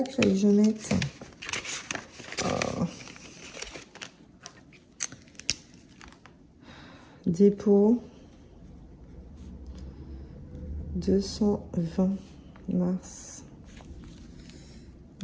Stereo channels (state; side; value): identical; both; correlation 1.00